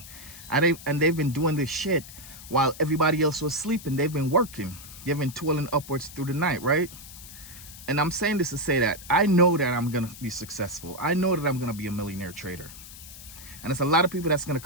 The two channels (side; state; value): left; noise; hiss, 15 dB below the sound